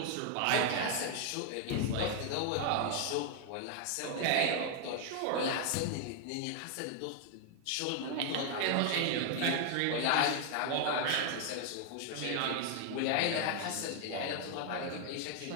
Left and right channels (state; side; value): different; both; correlation 0.00